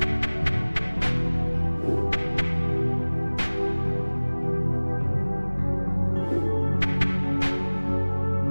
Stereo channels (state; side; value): inverted; both; correlation -1.00